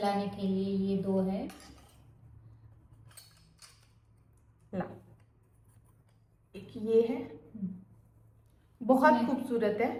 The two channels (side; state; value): both; identical; correlation 1.00